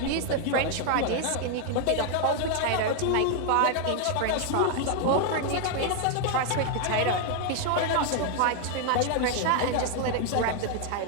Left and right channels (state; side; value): different; both; correlation 0.00